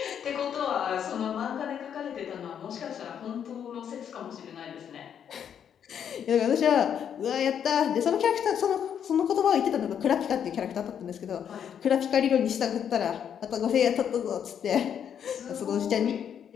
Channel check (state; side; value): quieter; right; 8.5 dB